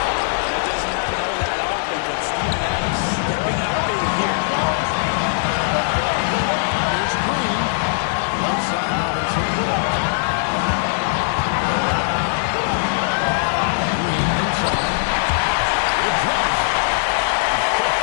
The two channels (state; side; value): silent; right; digital silence